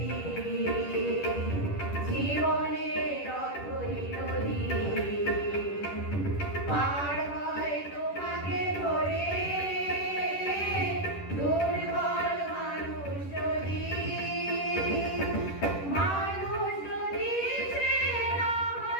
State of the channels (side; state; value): right; late; 10 ms